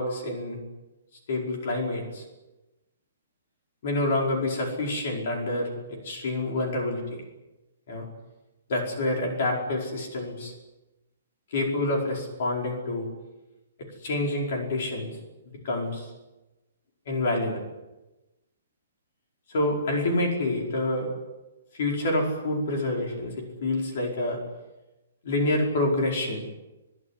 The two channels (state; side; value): inverted; both; correlation -0.48